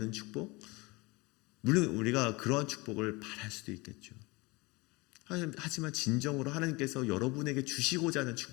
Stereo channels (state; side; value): quieter; right; 24.6 dB